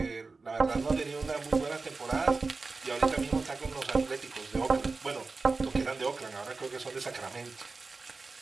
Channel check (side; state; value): left; quieter; 4.0 dB